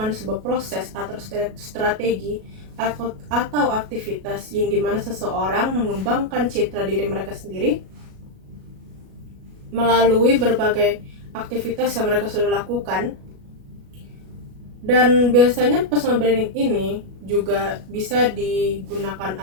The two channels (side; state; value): left; late; 37 ms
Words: sebuah proses atau strategi atau aktivitas yang dimana seseorang mengembangkan citra diri mereka sendiri melalui berbagai aktivitas yang mereka sudah lakukan. Dan biasanya personal branding ini juga bisa digunakan